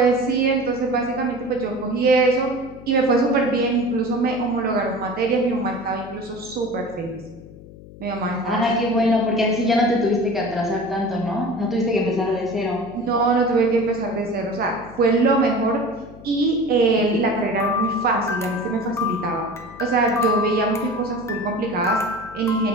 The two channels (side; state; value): left; noise; hum, 18 dB below the sound